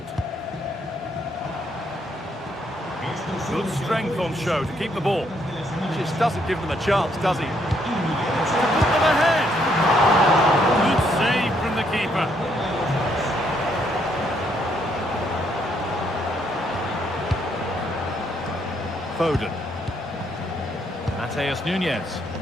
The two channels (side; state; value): both; normal; correlation 0.72